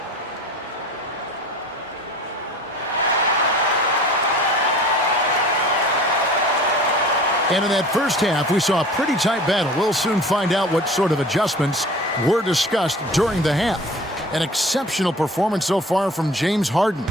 And in that first half, we saw a pretty tight battle. We'll soon find out what sort of adjustments were discussed during the half. An exceptional performance so far from James Harden.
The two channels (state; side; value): normal; both; correlation 0.43